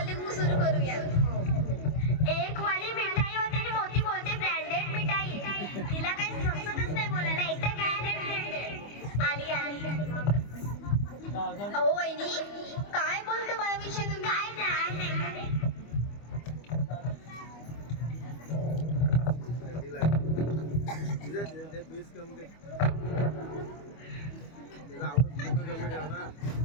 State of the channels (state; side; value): late; right; 25 ms